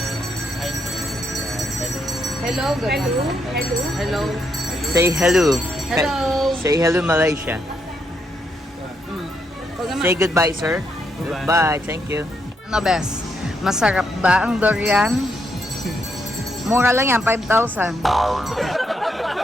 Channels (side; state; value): both; normal; correlation 0.78